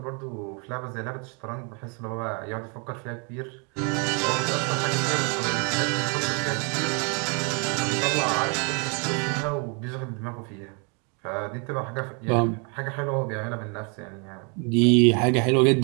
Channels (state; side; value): quieter; left; 35.5 dB